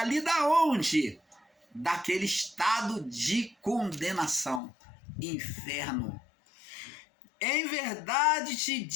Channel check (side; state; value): right; drops out; at 4.6 s